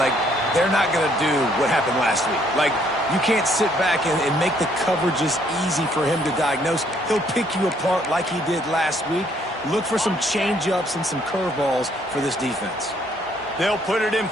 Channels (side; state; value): both; normal; correlation 0.66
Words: they're not going to do what happened last week. Like, you can't sit back and make the coverages easy for him to diagnose. He'll pick you apart like he did last week. Look for some change-ups and some curveballs for this defense. They'll put it in